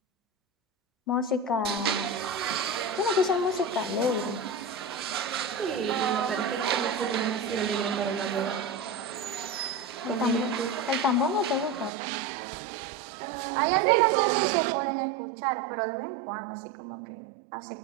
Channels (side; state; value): left; drops out; at 11.9 s